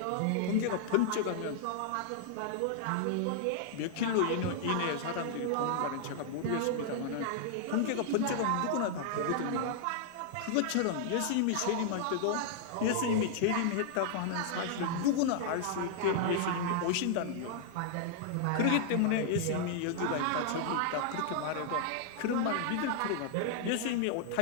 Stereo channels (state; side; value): different; both; correlation -0.01